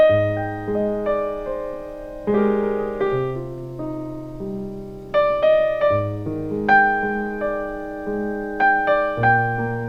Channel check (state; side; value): identical; both; correlation 1.00